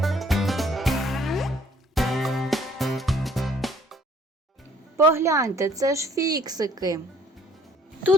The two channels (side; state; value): both; normal; correlation 0.59